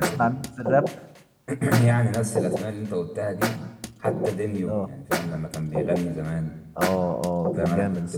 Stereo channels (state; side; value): identical; both; correlation 1.00